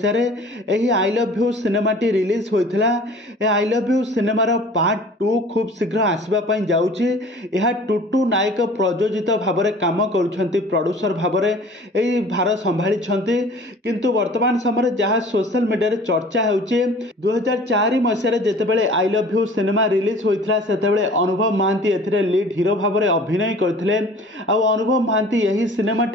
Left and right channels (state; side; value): normal; both; correlation 0.46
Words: एही आई लव यू सिनेमाटी रिलीज होइथिला। ए आई लव यू सिनेमार पार्ट 2 खूब शीघ्र आसबापई जाउछि। यह टुटू नायक प्रयोजित भाव में काम करुछंती, प्रोड्यूसर भाव में एही भार संभाली छंती। किंतु वर्तमान समय जहाँ सोशल मीडिया चर्चा होउछि 2004 मसीह जेतेबेले I love you cinema release होइथिला सेतेबेले अनुभव महांती एथिरे लीड हीरो भाव में अभिनय करथिले। आ अनुभव महांती यही